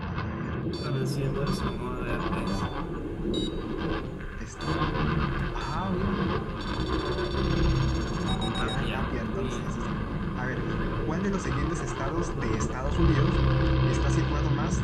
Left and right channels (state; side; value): identical; both; correlation 1.00